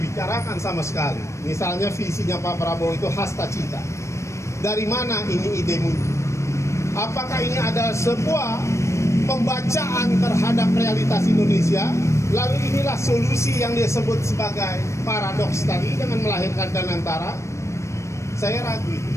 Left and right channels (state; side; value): late; right; 0.14 ms